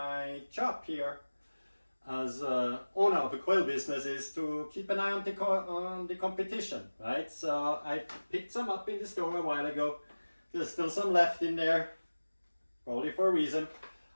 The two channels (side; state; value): both; inverted; correlation -1.00